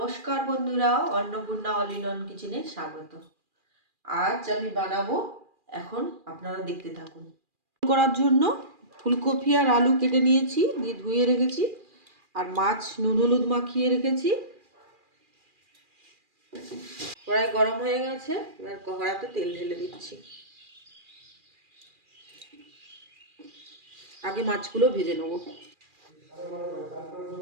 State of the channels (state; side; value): late; left; 2.4 ms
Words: বন্ধুরা, অন্নপূর্ণা অল ইন ওয়ান কিচেনে স্বাগত। আজ আমি বানাবো, এখন আপনারা দেখতে থাকুন। করার জন্য ফুলকপি আর আলু কেটে নিয়েছি, দিয়ে ধুয়ে রেখেছি, আর মাছ নুন হলুদ মাখিয়ে রেখেছি। কড়াই গরম হয়ে গেছে, এবার কড়াইতে তেল ঢেলে দিচ্ছি। আগে মাছগুলো ভেজে নেব।